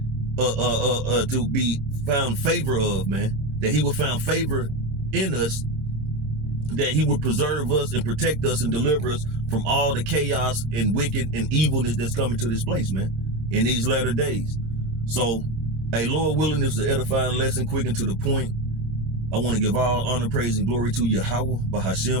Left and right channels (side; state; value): left; late; 27 ms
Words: to be found favor of, man. That he would find favor in us, that he would preserve us and protect us and deliver us from all the chaos and wicked and evilness that's coming to this place, man, in these latter days. So, hey, Lord willing, this is an edifying lesson, quick and to the point. I want to give all honor, praise, and glory to YAHAWAH,